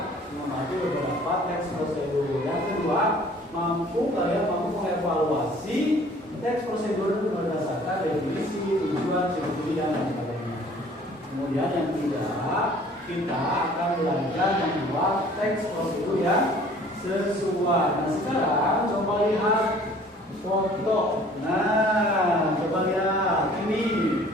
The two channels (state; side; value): normal; both; correlation 0.52